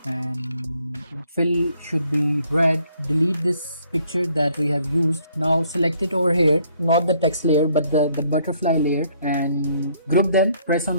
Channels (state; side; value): inverted; both; correlation -0.66